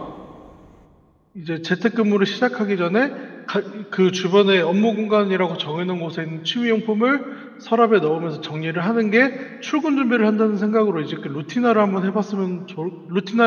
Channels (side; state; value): both; identical; correlation 1.00